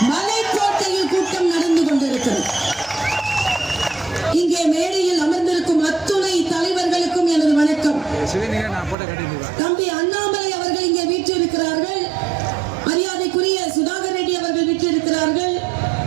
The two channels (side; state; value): left; drops out; at 9.0 s